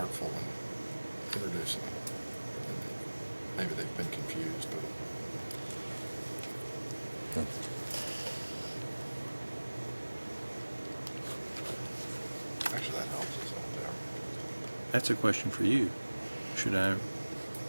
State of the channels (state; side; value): inverted; both; correlation -1.00